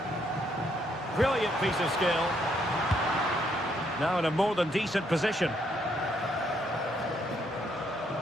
Brilliant piece of skill. Now in a more than decent position.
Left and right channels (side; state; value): both; normal; correlation 0.72